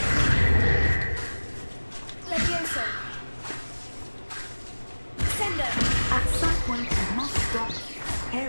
Levioso. At some point, you must stop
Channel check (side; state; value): both; inverted; correlation -1.00